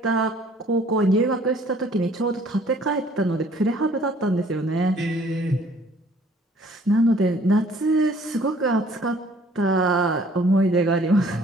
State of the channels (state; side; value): normal; both; correlation 0.57